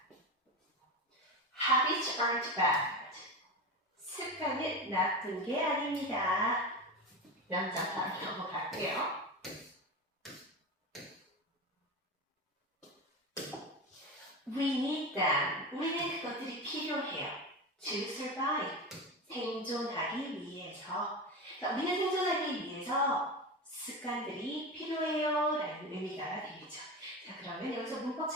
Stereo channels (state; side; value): normal; both; correlation 0.23